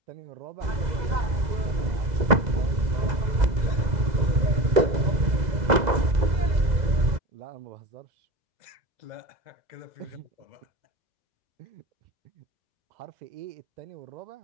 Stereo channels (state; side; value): late; left; 2.0 ms